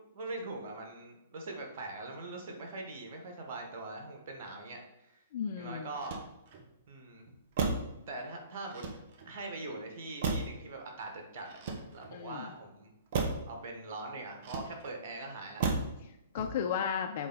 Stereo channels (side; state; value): both; inverted; correlation -0.45